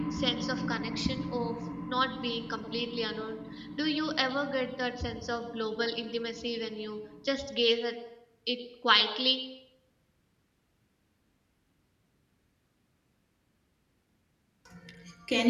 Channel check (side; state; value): both; identical; correlation 1.00